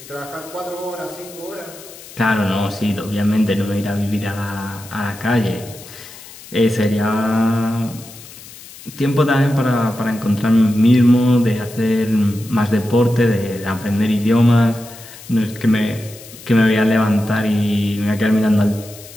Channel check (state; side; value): noise; left; hiss, 18 dB below the sound